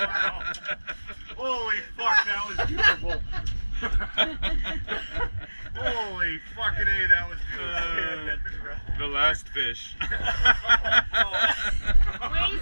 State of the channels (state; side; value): inverted; both; correlation -1.00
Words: while. Holy fuck, that was beautiful. Holy fucking A, that was beautiful. The last fish.